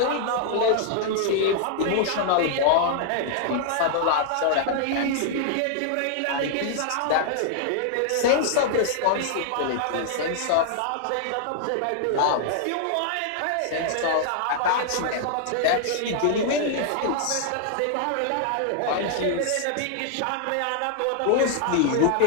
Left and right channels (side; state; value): both; different; correlation 0.00